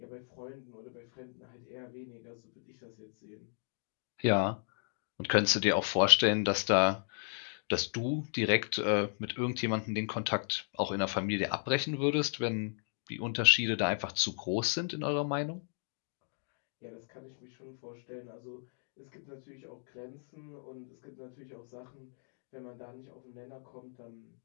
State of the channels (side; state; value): right; silent; digital silence